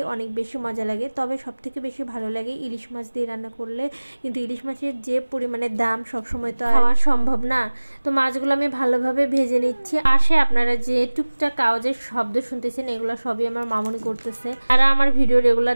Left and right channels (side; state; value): both; inverted; correlation -1.00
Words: অনেক বেশি মজা লাগে, তবে সবথেকে বেশি ভালো লাগে ইলিশ মাছ দিয়ে রান্না করলে। কিন্তু ইলিশ মাছের যে পরিমাণে দাম সবসময় তো খাওয়া সম্ভব না। তো মাছগুলো আমি ভালোভাবে ভেজে নিচ্ছি। পাশে আপনারা যে টুকটাক আওয়াজের শব্দ শুনতেছেন এগুলো সবই আমার মামুনি করতেছে। যারা আমার ভিডিও রেগুলার